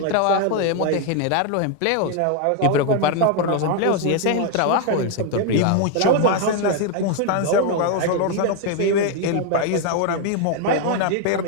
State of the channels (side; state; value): both; different; correlation 0.00